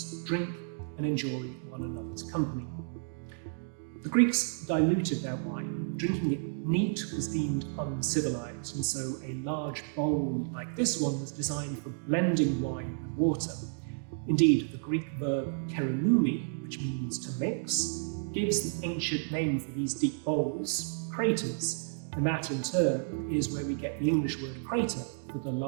drink, and enjoy one another's company. The Greeks diluted their wine. Drinking it neat was deemed uncivilized, and so a large bowl like this one was designed for blending wine with water. Indeed, the Greek verb keronoumi, which means to mix, gives the ancient name for these deep bowls, craters, and that in turn is where we get the English word crater for the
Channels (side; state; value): left; silent; digital silence